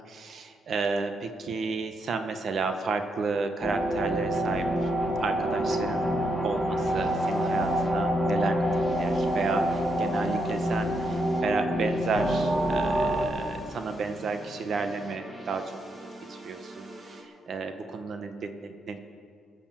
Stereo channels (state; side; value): normal; both; correlation 0.80